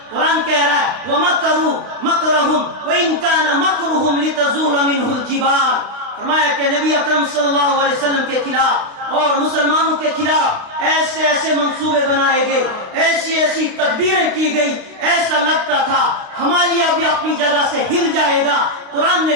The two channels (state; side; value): late; left; 32 ms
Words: قرآن کہہ رہا ہے وَمَكَرُوا مَكْرَهُمْ وَإِنْ كَانَ مَكْرُهُمْ لِتَزُولَ مِنْهُ الْجِبَالُ۔ فرمایا کہ نبی اکرم صلی اللہ علیہ وسلم کے خلاف اور مسلمانوں کے خلاف ایسے ایسے منصوبے بنائے گئے، ایسی ایسی تدبیریں کی گئی، ایسا لگتا تھا ہمالیہ بھی اپنی جگہ سے ہل جائے گا۔ قرآن نے